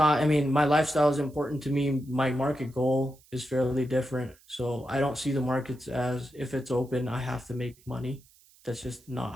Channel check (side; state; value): right; noise; hiss, 28 dB below the sound